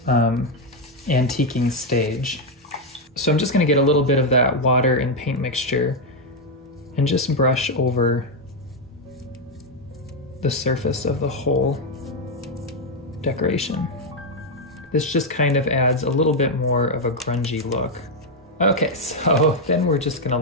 antiquing stage. So I'm just going to get a little bit of that water and paint mixture and just brush over the surface of the whole decoration. This just kind of adds a little bit more of a grungy look. Okay, so then we're just gonna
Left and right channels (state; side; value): normal; both; correlation 0.03